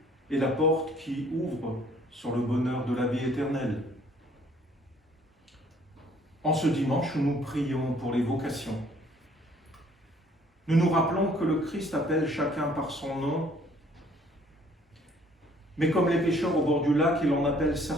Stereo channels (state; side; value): normal; both; correlation 0.59